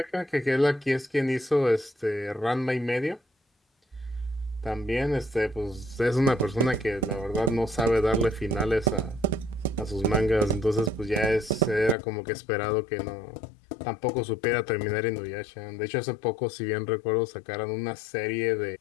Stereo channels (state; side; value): drops out; right; at 12.0 s